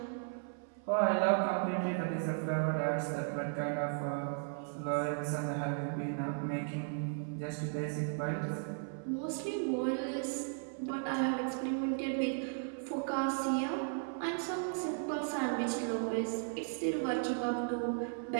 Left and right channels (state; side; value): silent; left; 54 dB below the other